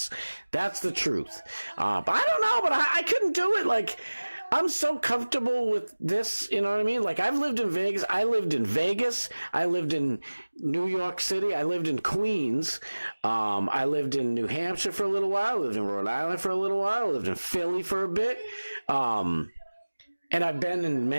That's the truth. But I don't know, but I couldn't do it. I'm so comfortable with this, you know what I mean? I've lived in Vegas. I lived in New York City. I lived in Queens. I lived in New Hampshire for a little while. I lived in Rhode Island for a little while. I lived in Philly for a bit. And I've been in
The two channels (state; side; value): inverted; both; correlation -1.00